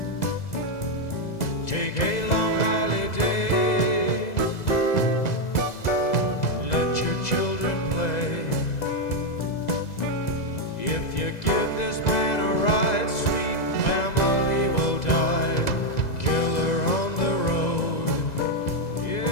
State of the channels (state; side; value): late; right; 2.0 ms